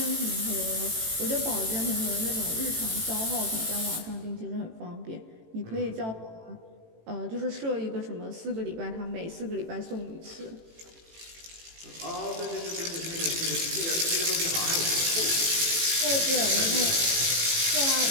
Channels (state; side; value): late; left; 18 ms